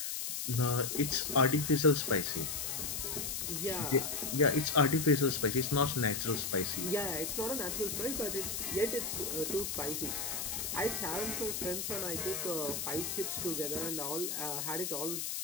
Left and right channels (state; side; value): noise; left; hiss, 3 dB below the sound